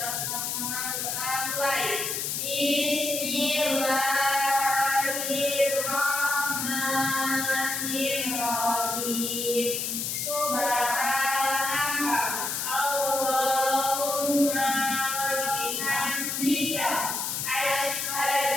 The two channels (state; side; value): noise; left; hiss, 2 dB below the sound